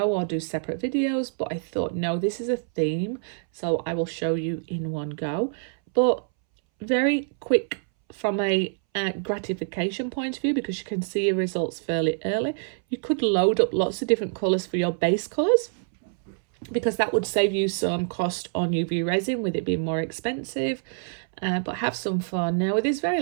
or do separate videos, but I thought, no, this is a theme, so I will show you in one go. But very quick from a gratification point of view, because you can see your results fairly early. You could load up lots of different colours for your base colours, because that would save you some cost on UV resin with it being more expensive. But have some fun. Now with this very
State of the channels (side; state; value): left; silent; 61 dB below the other